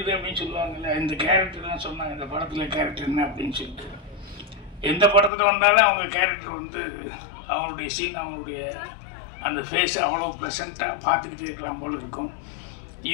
அப்படின்னு சொல்லுவாங்கல்ல. இந்த கேரக்டர்லாம் சொன்னாங்க, இந்த படத்தில் கேரக்டர் என்ன அப்படின்னு சொல்லிட்டு. எந்த படத்தில் வந்தாலும் அவங்க கேரக்டர் வந்து அவங்களுடைய சீன், அவங்களுடைய அந்த ஃபேஸ் அவ்வளோ ப்ளசண்ட்டாக பார்த்துக்கிட்டே இருக்கலாம் போல் இருக்கும்.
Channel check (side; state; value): right; drops out; at 5.3 s